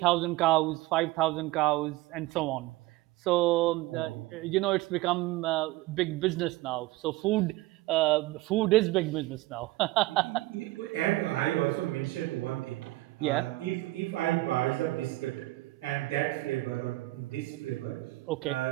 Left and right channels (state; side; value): quieter; left; 18.8 dB